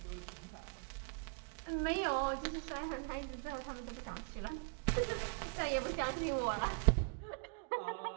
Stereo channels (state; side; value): quieter; left; 38.5 dB